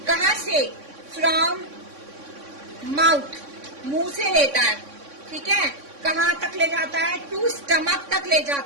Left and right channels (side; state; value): left; late; 3.6 ms